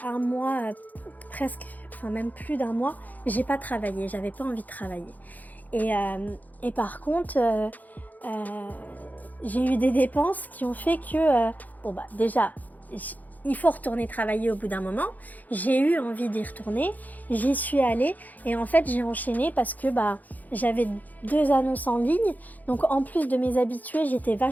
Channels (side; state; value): right; late; 0.081 ms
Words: un mois, presque, enfin même plus d'un mois, j'ai pas travaillé. J'avais pas envie de travailler. Et par contre, j'ai eu des dépenses qui ont fait que, déjà, il faut retourner travailler au bout d'un moment. J'ai eu envie d'y retourner, j'y suis allée et en fait j'ai enchaîné parce que j'avais 2 annonces en ligne. Donc en plus de mes habitués, j'étais